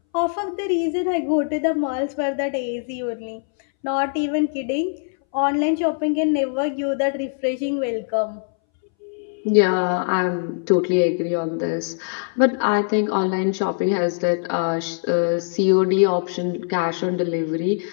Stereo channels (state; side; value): silent; right; 63 dB below the other